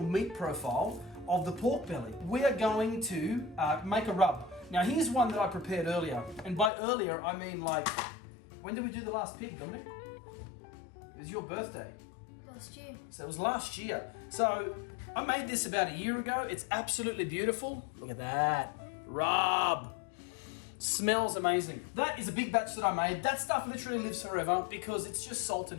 meat profile of the pork belly. We are going to make a rub. Now here's one that I prepared earlier. And by earlier, I mean like, when did we do the last pig, Dominic? It was your birthday. Last year. So it was last year. So I made this about a year ago. It's absolutely beautiful. Look at that. Rub. Smells amazing. That is a big batch that I made. That stuff literally lives forever because it's just salt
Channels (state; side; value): drops out; right; at 6.7 s